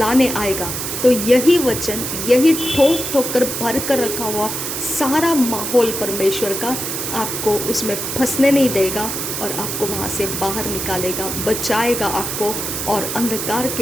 आएगा तो यही वचन, यही ठोक ठोक कर भर कर रखा हुआ सारा माहौल परमेश्वर का आपको उसमें फंसने नहीं देगा और आपको वहाँ से बाहर निकालेगा, बचाएगा आपको, और अंधकार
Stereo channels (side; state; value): right; noise; hiss, 4 dB below the sound